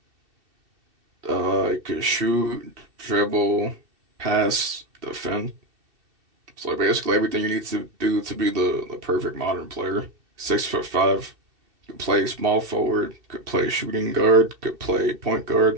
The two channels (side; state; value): left; late; 2.7 ms